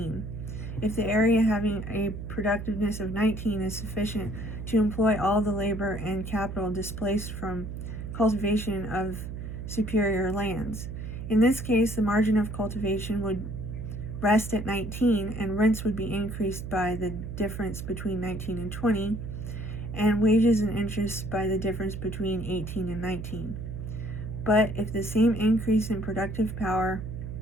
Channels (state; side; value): noise; right; hum, 7 dB below the sound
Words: If the area having a productiveness of 19 is sufficient to employ all the labor and capital displaced from cultivation of superior lands, in this case the margin of cultivation would rest at 19, and rents would be increased by the difference between 19 and 20, and wages and interest by the difference between 18 and 19. But if the same increase in productive power,